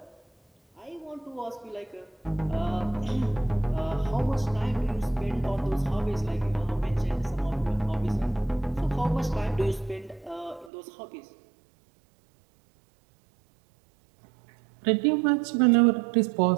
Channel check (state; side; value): drops out; left; at 10.7 s